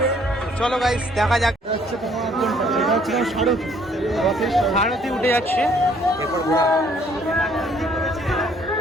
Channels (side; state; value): both; normal; correlation 0.62